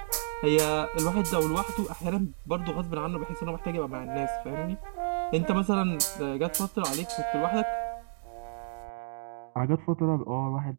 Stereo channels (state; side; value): silent; left; digital silence